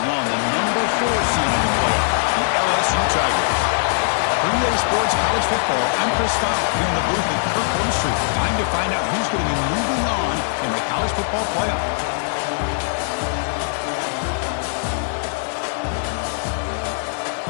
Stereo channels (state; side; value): silent; right; digital silence